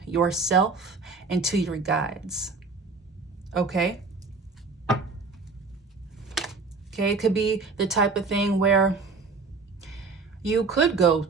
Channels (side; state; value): left; quieter; 4.2 dB